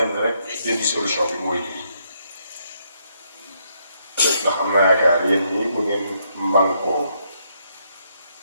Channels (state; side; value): inverted; both; correlation -0.75